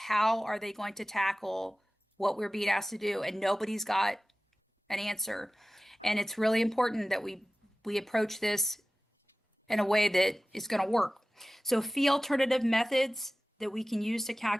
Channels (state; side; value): normal; both; correlation 0.96